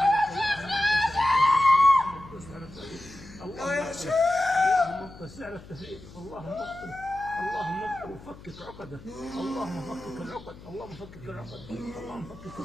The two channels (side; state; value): left; noise; hum, 18 dB below the sound